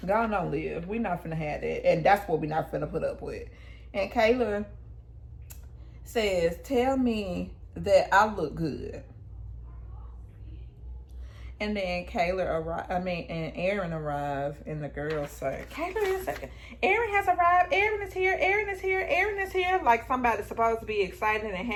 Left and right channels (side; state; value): both; identical; correlation 1.00